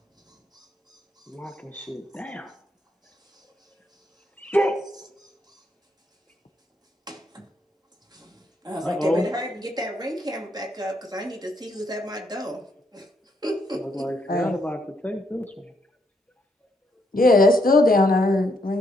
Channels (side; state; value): both; normal; correlation 0.75